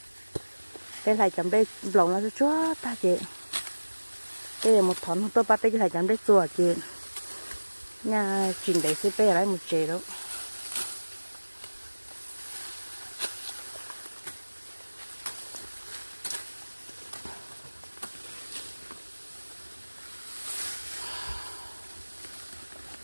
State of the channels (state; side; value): inverted; both; correlation -1.00